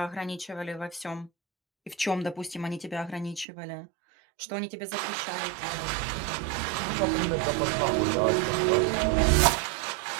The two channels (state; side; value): drops out; left; at 3.5 s